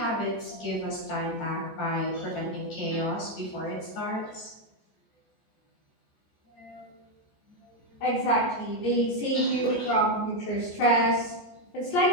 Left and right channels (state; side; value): late; right; 14 ms